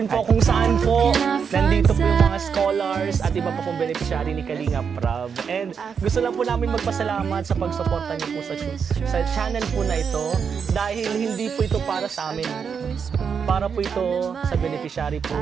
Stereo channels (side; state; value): left; quieter; 6.6 dB